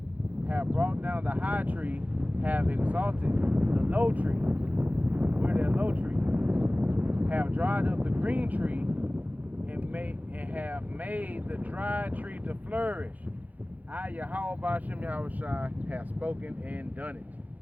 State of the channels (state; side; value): late; left; 0.079 ms